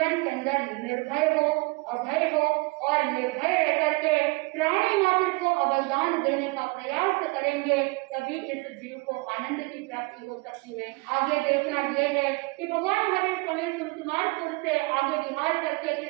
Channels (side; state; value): left; quieter; 27.2 dB